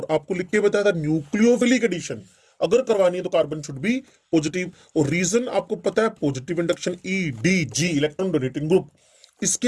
आपको लिख के बताया था न्यूक्लियोफिलिक एडिशन अगर करवानी है तो कार्बन शुड बी पॉजिटिव, और रीजन आपको पता है positive induction EDG electron donating group. इसके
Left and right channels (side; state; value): both; identical; correlation 1.00